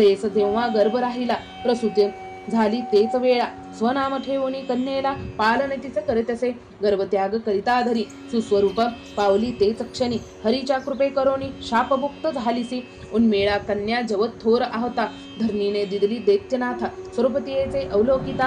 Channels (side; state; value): both; identical; correlation 1.00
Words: तेव्हा गर्भ राहिला प्रसूती झाली तेच वेळा स्वनाम ठेवणी कन्येला पालन तिचे करीतसे गर्भत्याग करिता धरी सुस्वरूप पावली तेच क्षणी हरीच्या कृपे करोनी शापमुक्त झालीसी उन्मेळा कन्या जवत थोर आहता धरणीने दिदली दैत्यनाथा स्वरूपतीयेचे